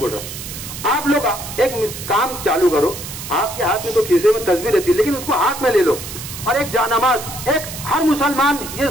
रहा हूं। आप लोग एक काम चालू करो, आपके हाथ में तो खीसे में तस्वीर रहती है, लेकिन उसको हाथ में ले लो और एक जानमाज, एक हर मुसलमान ये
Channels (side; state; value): right; noise; hiss, 10 dB below the sound